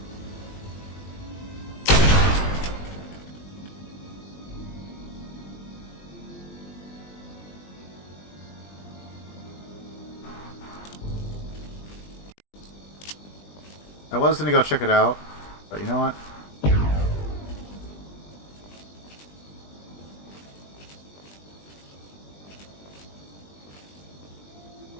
I was gonna go check it out, but you know what?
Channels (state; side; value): late; right; 20 ms